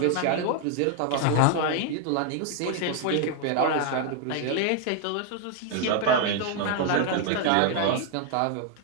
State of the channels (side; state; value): both; different; correlation 0.00